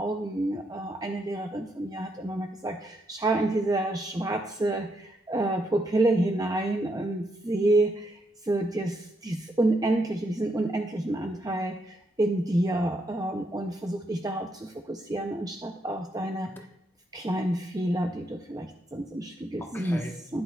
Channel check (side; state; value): both; normal; correlation 0.78